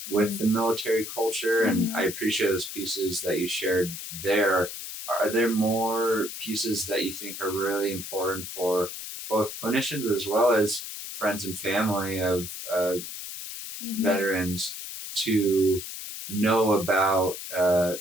with the military culture, and I appreciate those pieces that you shared there. Are there more pieces that you think are really important for both clinicians as well as friends and family of veterans to know about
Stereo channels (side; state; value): left; noise; hiss, 9 dB below the sound